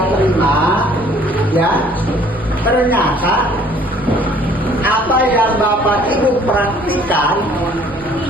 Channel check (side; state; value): right; noise; rumble, 19 dB below the sound